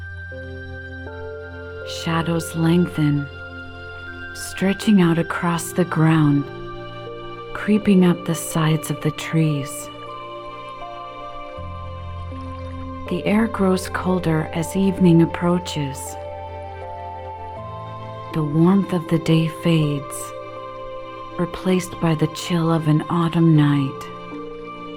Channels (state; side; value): identical; both; correlation 1.00